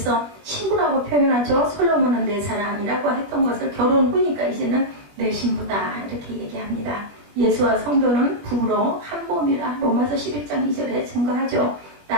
신부라고 표현하죠. 솔로몬은 내 사랑이라고 했던 것을 결혼 후니까 이제는 내 신부다 이렇게 얘기합니다. 예수와 성도는 부부로 한 몸이라 로마서 11장 2절에 증거하죠.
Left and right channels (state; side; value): late; left; 21 ms